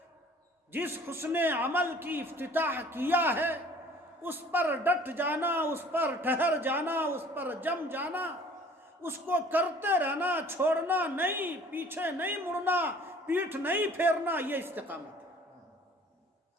جس حسن عمل کی افتتاح کیا ہے، اس پر ڈٹ جانا، اس پر ٹھہر جانا، اس پر جم جانا، اس کو کرتے رہنا، چھوڑنا نہیں، پیچھے نہیں مڑنا، پیٹھ نہیں پھیرنا، یہ استقامت ہے۔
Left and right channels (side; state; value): both; normal; correlation 0.51